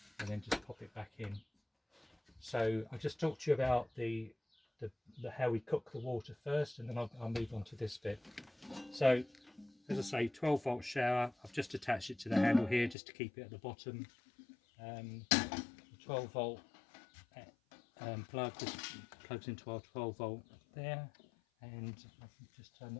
and then just pop it back in. So I'll just talk to you about the how we cook the water first, and then I'll move on to this bit. So as I say, 12-volt shower. I've just attached it to the handle here just to keep it at the bottom. The 12-volt plug just plugs into our 12-volt there, and I can just turn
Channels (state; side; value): drops out; right; at 13.0 s